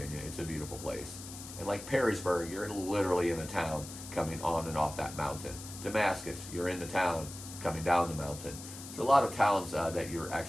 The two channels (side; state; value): left; noise; hiss, 12 dB below the sound